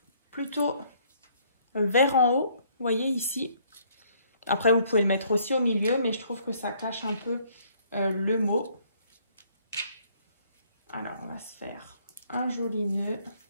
plutôt vers en haut, vous voyez ici. Après, vous pouvez le mettre aussi au milieu, mais je trouve que ça cache un peu le mot. Alors, on va se faire un joli nœud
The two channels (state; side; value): inverted; both; correlation -0.64